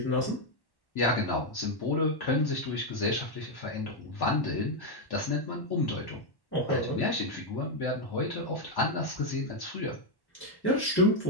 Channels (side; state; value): right; late; 1.1 ms